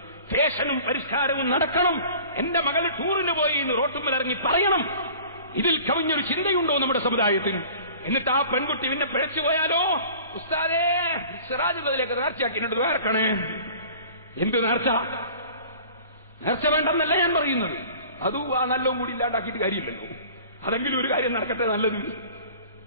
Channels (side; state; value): both; inverted; correlation -0.45